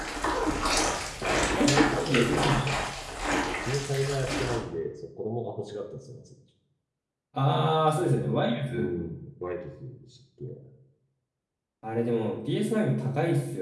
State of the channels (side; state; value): both; identical; correlation 1.00